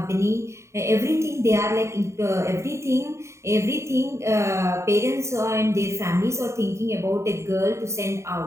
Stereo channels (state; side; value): late; left; 0.14 ms